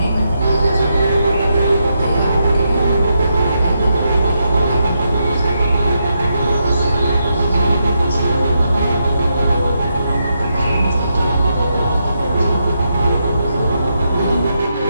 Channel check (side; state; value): both; inverted; correlation -0.83